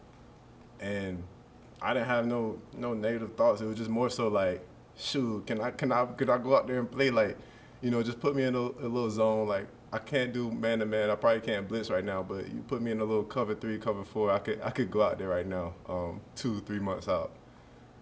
and I didn't have no negative thoughts. It was just more so like, shoot, could I go out there and play like, just put me in a little zone. Like I can't do man to man. I probably can't blitz right now, but you put me in a little cover 3, cover 4. I could go out there right now, 2, 3 months out.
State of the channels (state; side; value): identical; both; correlation 1.00